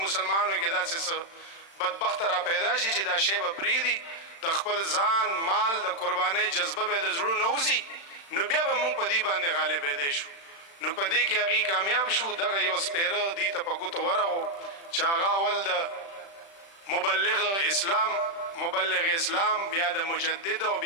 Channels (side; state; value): right; late; 36 ms